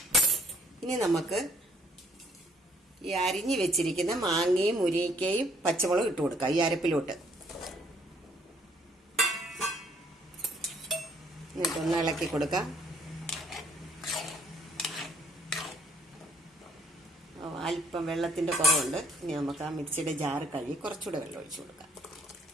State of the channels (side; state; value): both; normal; correlation 0.64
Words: ഇനി നമുക്ക് ഈ അരിഞ്ഞു വെച്ചിരിക്കുന്ന മാങ്ങയും മുരിങ്ങയ്ക്കയും പച്ചമുളകും ഇട്ട് കൊടുക്കാം ഈ അരപ്പിലോട്ട്. എന്നിട്ടൊന്ന് ഇളക്കി കൊടുക്കാം. അല്പം വെള്ളത്തിൻ്റെ കുറവുണ്ട്. ഇനി നമുക്ക് ആ മിക്സിയുടെ ജാറ് കഴുകി കുറച്ചുകൂടെ വെള്ളം ഒഴിച്ചു കൊടുക്കാം.